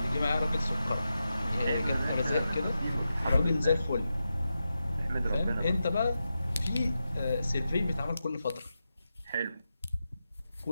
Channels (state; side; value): inverted; both; correlation -0.89